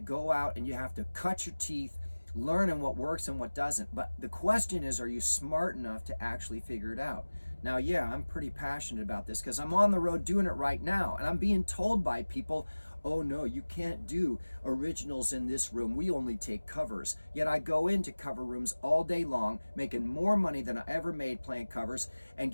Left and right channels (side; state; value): both; inverted; correlation -1.00